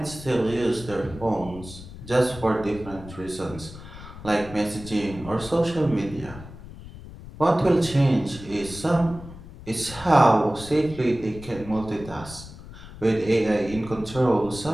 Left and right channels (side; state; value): left; noise; rumble, 15 dB below the sound